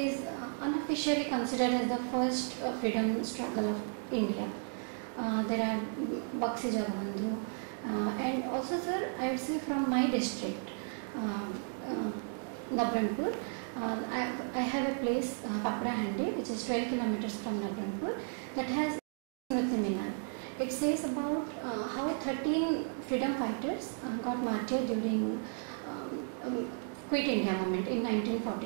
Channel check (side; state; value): left; silent; 55 dB below the other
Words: unofficially considered as the first freedom struggle of India. There are Bakshi Jagabandhu, and also, sir, I would say from my district, Nabrangpur, I have a place, Paprahandi, which is 12 kilometers from Nabrangpur, that has Smriti Minar. It says about how 13 freedom fighters got martyred during Quit India movement in